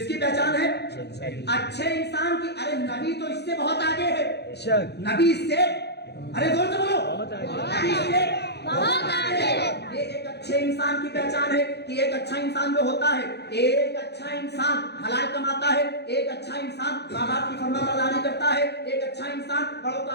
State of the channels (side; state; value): right; late; 0.48 ms